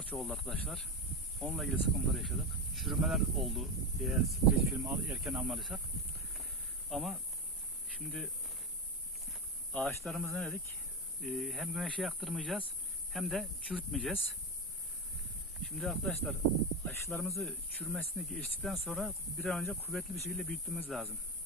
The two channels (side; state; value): both; normal; correlation 0.16